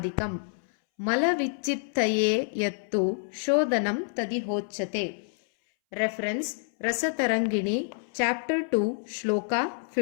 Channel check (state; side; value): silent; right; 60 dB below the other